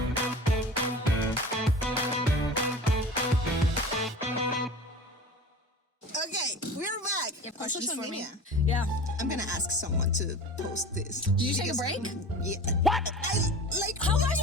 Okay, we're back. On social media. Yeah. I'm gonna ask someone to post this. Did you take a break? Yeah. What? How am I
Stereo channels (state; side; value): normal; both; correlation 0.36